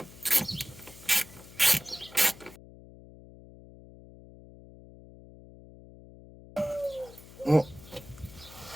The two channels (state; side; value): noise; left; hum, 19 dB below the sound